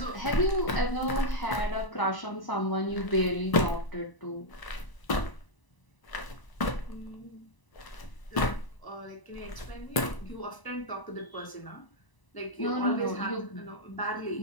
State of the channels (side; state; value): right; late; 1.0 ms